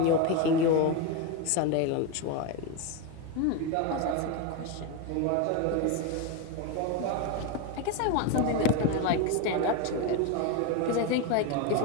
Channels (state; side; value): different; both; correlation 0.03